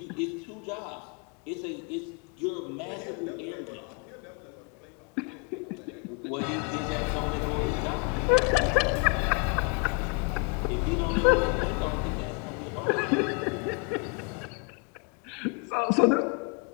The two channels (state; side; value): quieter; right; 32.4 dB